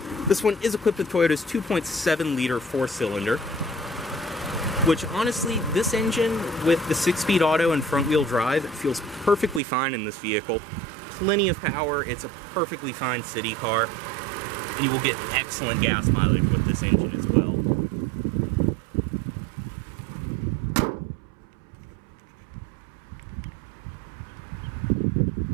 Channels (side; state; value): left; drops out; at 9.6 s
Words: this one is equipped with Toyota's 2.7-liter 4-cylinder, which honestly, this engine with the 6-speed auto and front-wheel drive, it feels perfectly fine in this vehicle. Plenty of power, it's a perfectly fine city car, and you will get excellent gas mileage with this engine as well.